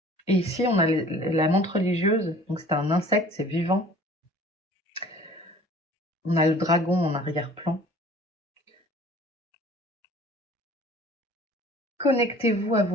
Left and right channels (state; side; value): normal; both; correlation 0.49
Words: Et ici, on a la menthe religieuse. Donc, c'est un insecte, c'est vivant. On a le dragon en arrière-plan. Connectez-vous à